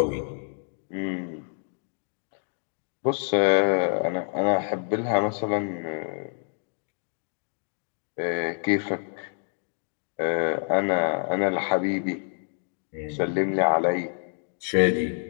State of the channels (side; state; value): right; silent; 57 dB below the other